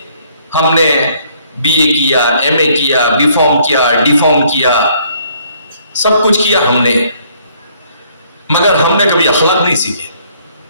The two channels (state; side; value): inverted; both; correlation -0.64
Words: ہم نے BA کیا، MA کیا، B Pharm کیا، D Pharm کیا، سب کچھ کیا ہم نے، مگر ہم نے کبھی اخلاق نہیں سیکھے،